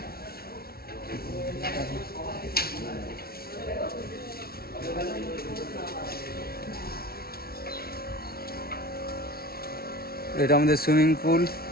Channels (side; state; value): right; late; 0.44 ms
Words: এটা আমাদের সুইমিং পুল,